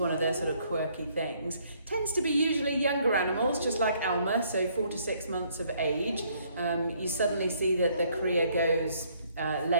of their sort of quirky things. Tends to be usually younger animals, just like Alma, so 4 to 6 months of age. You suddenly see that the Cria goes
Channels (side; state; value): both; inverted; correlation -0.66